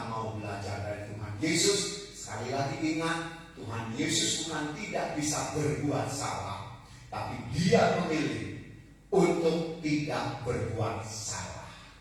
mau belajar dari Tuhan Yesus. Sekali lagi ingat, Tuhan Yesus bukan tidak bisa berbuat salah, tapi Dia memilih untuk tidak berbuat salah.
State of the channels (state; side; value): identical; both; correlation 1.00